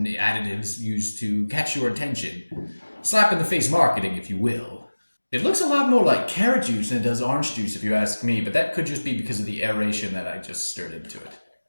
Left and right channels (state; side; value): inverted; both; correlation -1.00